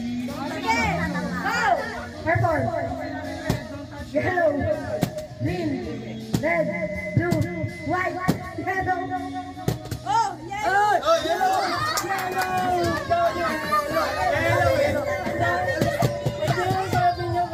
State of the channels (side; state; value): both; identical; correlation 1.00